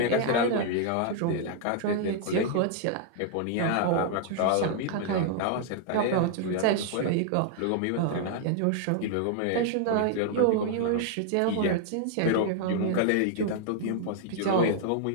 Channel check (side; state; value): both; different; correlation 0.00